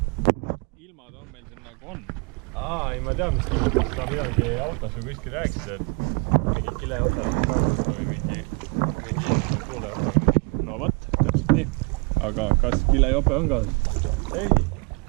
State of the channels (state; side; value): quieter; left; 30.8 dB